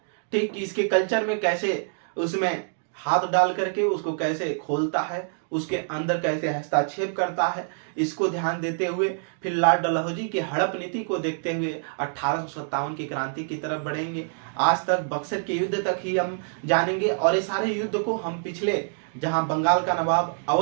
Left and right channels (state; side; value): silent; left; digital silence